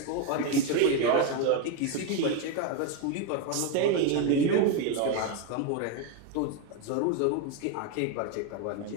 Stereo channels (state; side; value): different; both; correlation 0.02